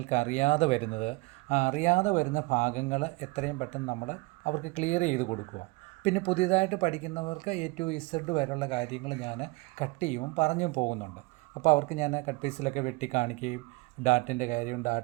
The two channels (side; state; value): left; quieter; 24.3 dB